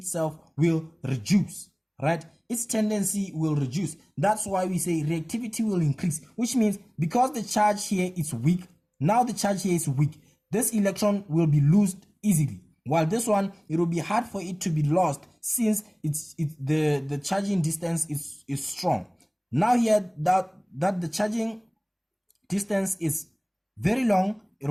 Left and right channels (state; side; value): identical; both; correlation 1.00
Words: will reduce, right? Its tendency will reduce. That's why we say reactivity will increase, which means because the charge here is weak, now the charge here is weak, this electron will be lost easily. While this one, it will be hard for it to be lost since the charging distance is strong. Now here that the charging distance is very long, it